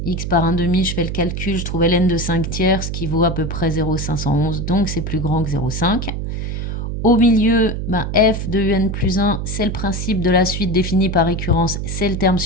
x par 1/2, je fais le calcul, je trouve ln de 5 tiers, ce qui vaut à peu près 0,511, donc c'est plus grand que 0,5. Au milieu, f de un plus 1, c'est le principe de la suite définie par récurrence, c'est le terme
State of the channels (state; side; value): noise; right; hum, 4 dB below the sound